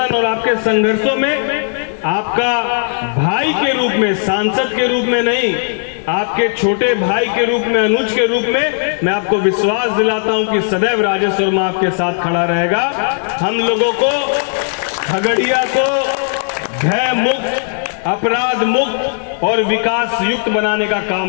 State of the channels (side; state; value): right; silent; digital silence